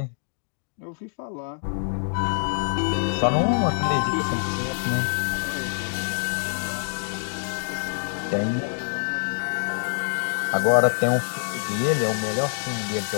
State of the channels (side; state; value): right; silent; digital silence